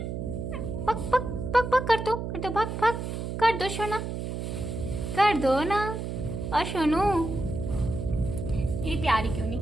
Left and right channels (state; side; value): noise; right; hum, 4 dB below the sound